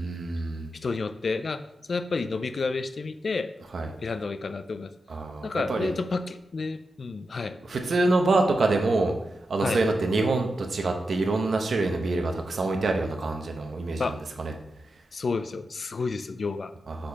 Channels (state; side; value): normal; both; correlation 0.88